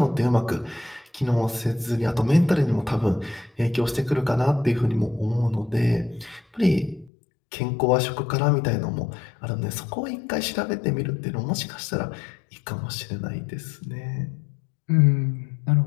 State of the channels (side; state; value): right; drops out; at 7.1 s